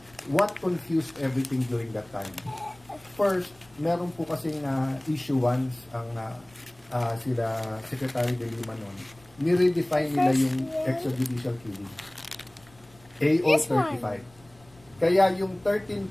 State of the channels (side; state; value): left; noise; rumble, 28 dB below the sound